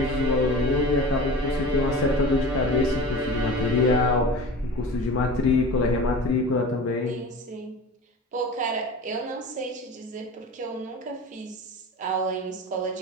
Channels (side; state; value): both; normal; correlation 0.35